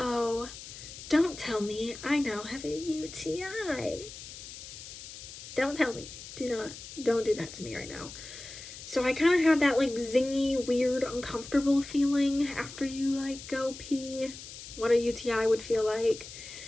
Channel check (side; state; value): left; noise; hiss, 13 dB below the sound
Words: don't tell me I now have a UTI. Don't tell me. Don't do that to me right now. So I kind of had that like zingy, weird, uncomfortable feeling after you like go pee, what a UTI would feel like.